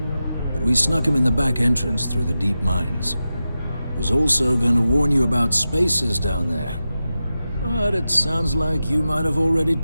but we snuck him in the back entrance through the deep mines. Was also going to warn you about spacers down there. But it sounds like you might have already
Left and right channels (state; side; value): inverted; both; correlation -0.92